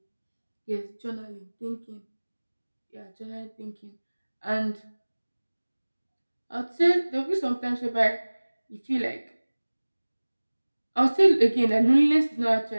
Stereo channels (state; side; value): inverted; both; correlation -1.00